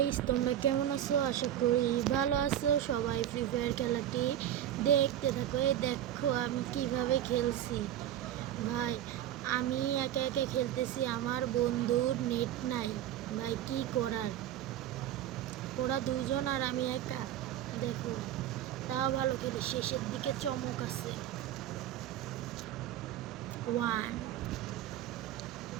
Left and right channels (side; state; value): left; quieter; 11.6 dB